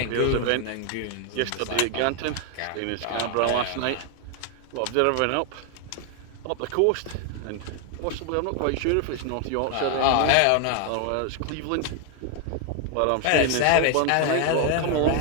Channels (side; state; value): both; different; correlation 0.01